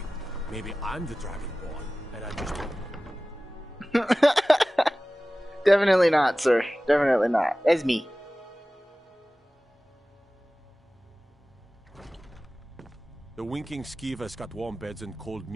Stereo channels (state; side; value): normal; both; correlation 0.97